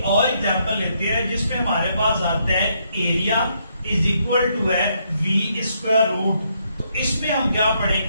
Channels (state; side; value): inverted; both; correlation -0.74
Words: और एग्जांपल लेते हैं जिसमें हमारे पास आता है एरिया इज इक्वल टू है v स्क्वायर रूट, तो इसमें हम क्या